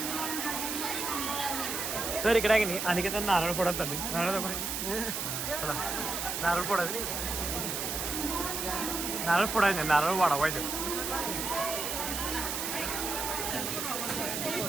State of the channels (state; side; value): noise; right; hiss, 2 dB below the sound